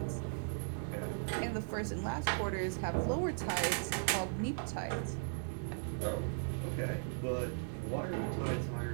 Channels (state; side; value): silent; left; digital silence